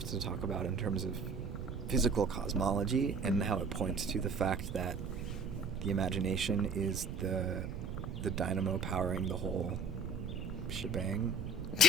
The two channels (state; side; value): noise; right; rumble, 7 dB below the sound